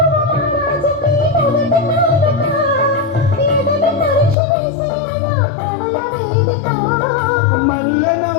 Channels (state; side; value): drops out; right; at 4.4 s